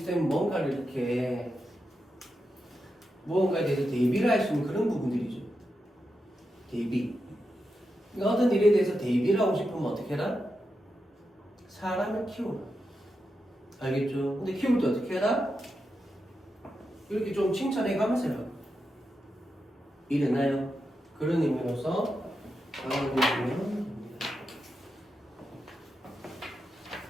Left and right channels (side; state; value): both; normal; correlation 0.87